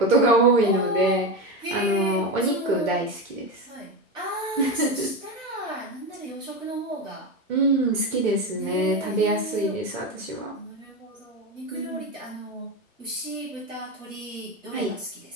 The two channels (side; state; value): both; normal; correlation 0.17